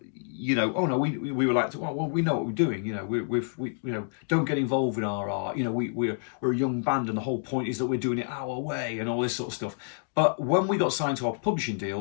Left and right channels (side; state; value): right; silent; digital silence